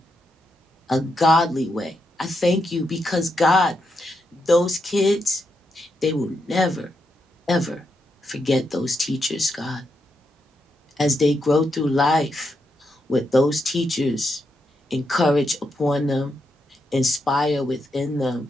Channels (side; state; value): both; normal; correlation 0.82